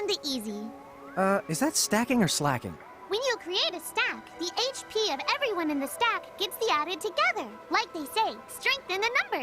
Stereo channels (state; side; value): identical; both; correlation 1.00